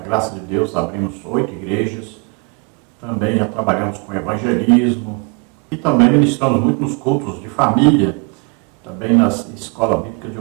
de Deus, abrimos 8 igrejas, também já trabalhamos com evangelismo, e também ministramos muito nos cultos de família, também na Escola Bíblica de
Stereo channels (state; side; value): quieter; left; 31.4 dB